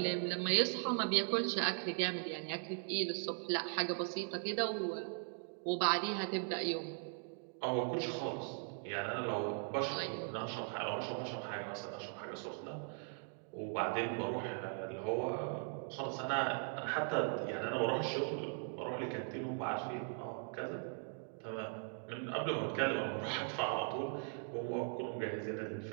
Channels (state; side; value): silent; left; 51 dB below the other